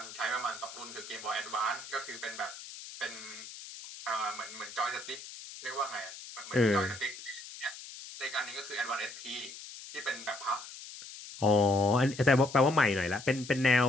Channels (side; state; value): left; noise; hiss, 13 dB below the sound